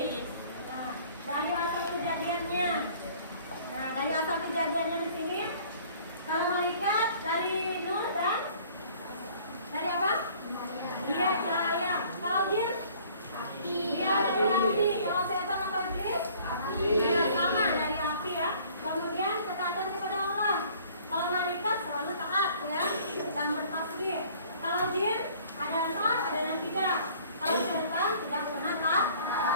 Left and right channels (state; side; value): inverted; both; correlation -0.54